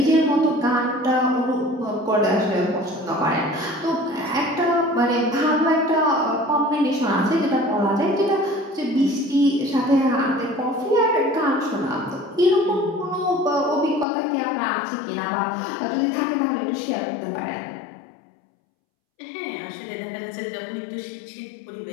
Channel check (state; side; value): drops out; right; at 14.1 s